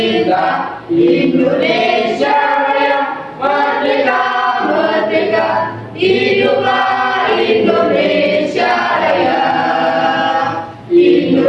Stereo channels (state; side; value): identical; both; correlation 1.00